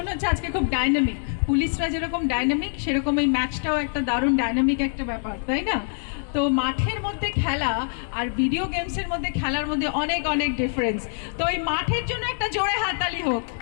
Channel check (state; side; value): silent; right; digital silence